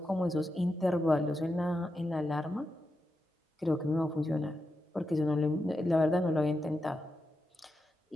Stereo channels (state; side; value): normal; both; correlation 0.88